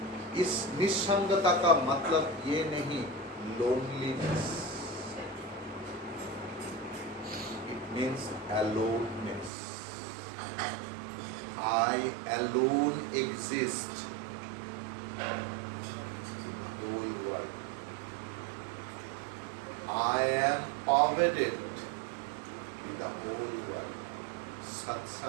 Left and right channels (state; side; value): drops out; left; at 9.5 s